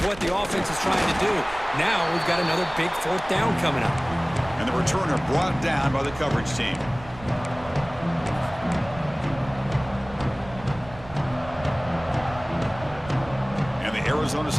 what the offense is trying to do. Now we've got another big 4th down coming up. And the returner brought down by the coverage team. And the Arizona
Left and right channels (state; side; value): noise; right; rumble, 17 dB below the sound